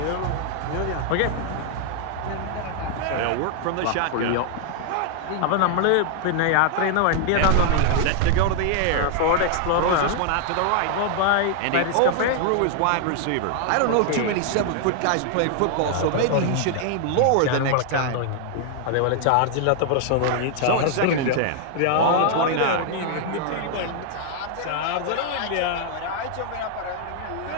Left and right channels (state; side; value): different; both; correlation 0.00